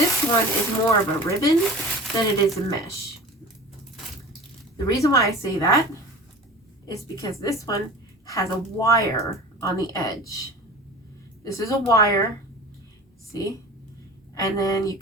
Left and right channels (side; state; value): both; normal; correlation 0.38